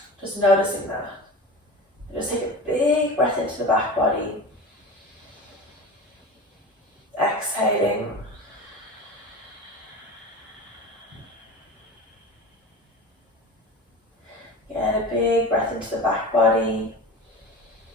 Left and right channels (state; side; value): normal; both; correlation 0.32